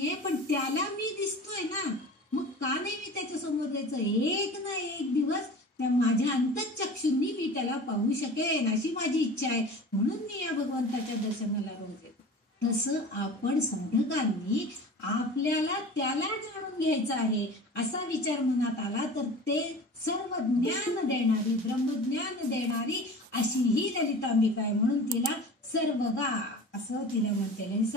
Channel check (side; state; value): both; normal; correlation 0.38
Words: पण त्याला मी दिसतोय ना, मग का नाही मी त्याच्या समोर जायचं. एक ना एक दिवस त्या माझ्या अंतःचक्षुंनी मी त्याला पाहू शकेन अशी माझी इच्छा आहे, म्हणून मी या भगवंताच्या दर्शनाला रोज येतो. तसं आपण साधकांनी आपल्याला त्याला जाणून घ्यायचं आहे असा विचार मनात आला तर ते सर्व ज्ञान देणारी, ब्रह्मज्ञान देणारी अशी ही ललितांबिका आहे. म्हणून तिला सर्वगा असं तिला म्हणते.